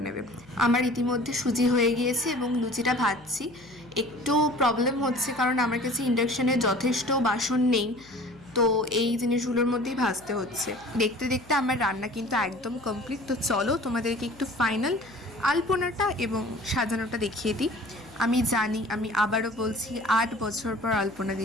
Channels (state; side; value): noise; left; hum, 25 dB below the sound